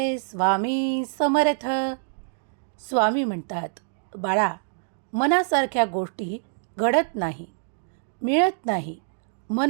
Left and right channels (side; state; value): left; silent; digital silence